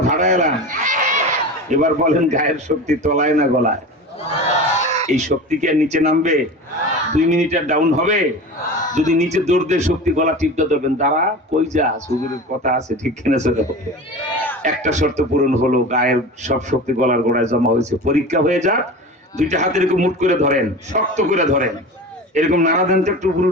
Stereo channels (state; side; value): normal; both; correlation 0.32